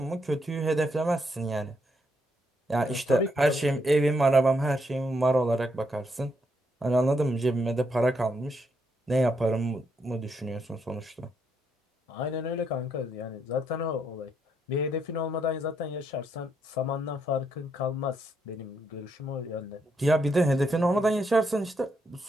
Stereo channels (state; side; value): normal; both; correlation 0.77